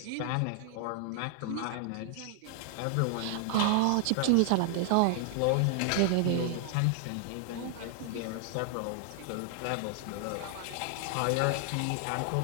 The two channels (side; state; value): both; different; correlation 0.00